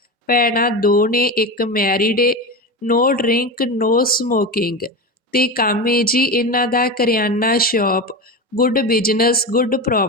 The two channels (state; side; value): normal; both; correlation 0.22